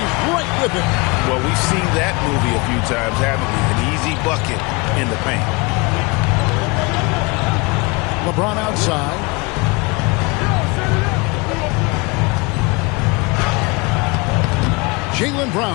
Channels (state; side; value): quieter; right; 26.9 dB